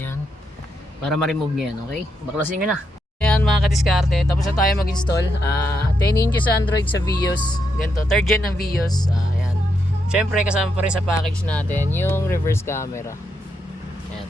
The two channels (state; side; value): normal; both; correlation 0.81